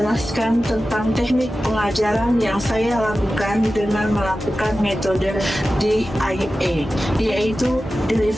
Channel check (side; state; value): both; normal; correlation 0.94